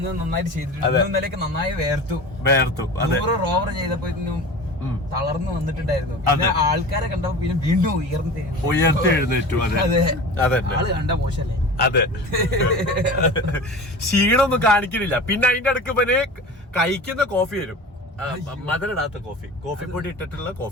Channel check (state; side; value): normal; both; correlation 0.35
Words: നന്നായിട്ട് ചെയ്തിട്ടുണ്ട്. ഇന്നലെയൊക്കെ നന്നായി വേർത്തു. റോവർ ചെയ്തപ്പോ തളർന്നു വന്നിട്ടുണ്ടായിരുന്നു. പിന്നെ ആൾക്കാരെ കണ്ടപ്പോ പിന്നെ വീണ്ടും ഉയർത്തി എഴുന്നേറ്റു. ആള് കണ്ട മോശല്ലേ? അതെ. ക്ഷീണമൊന്നും കാണിക്കുന്നില്ല. പിന്നെ അതിന്റെ അടുക്ക് പിന്നെ കഴിക്കുന്ന കോഫി വരും. മധുരടാത്ത കോഫി പൊടി ഇട്ടിട്ടുള്ള